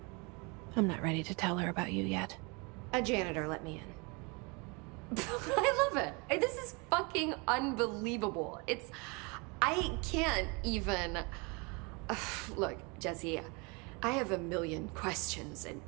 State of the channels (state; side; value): quieter; left; 29.7 dB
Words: I'm not ready to tell her about you yet. A janitor let me in. I love it. This is fucking unbelievable. I can't even... Look, Jesse, I have a million questions, and